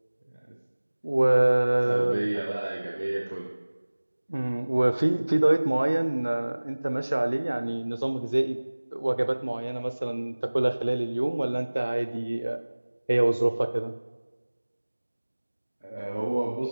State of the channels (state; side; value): inverted; both; correlation -1.00